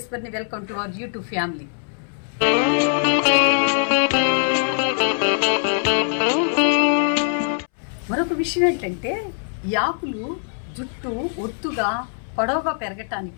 Welcome to our YouTube family. మరొక విషయం ఏంటంటే ఈ ఆకులు జుట్టు ఒత్తుగా పొడవుగా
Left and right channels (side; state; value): right; silent; 64 dB below the other